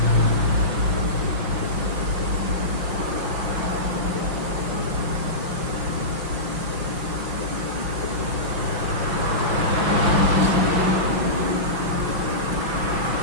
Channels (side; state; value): left; late; 5.6 ms